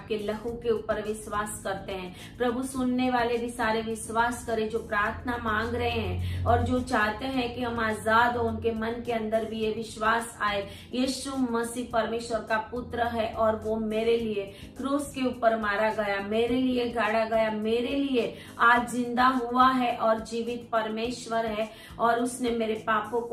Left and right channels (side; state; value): both; identical; correlation 1.00